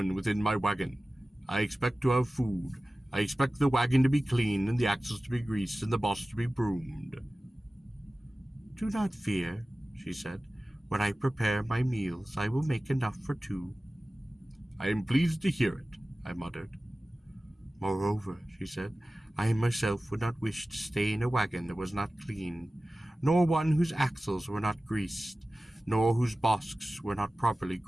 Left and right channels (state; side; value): normal; both; correlation 0.97